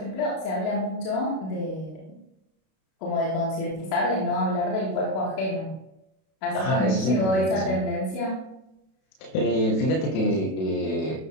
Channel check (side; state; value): right; late; 32 ms